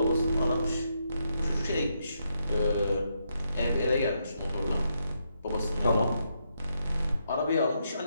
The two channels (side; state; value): both; inverted; correlation -0.79